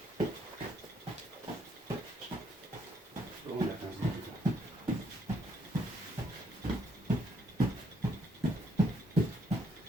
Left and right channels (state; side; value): normal; both; correlation 0.71